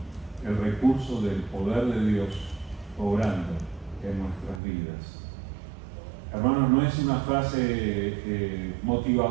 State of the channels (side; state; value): left; drops out; at 4.6 s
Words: el recurso del poder de Dios obrando en nuestras vidas. Hermanos, no es una frase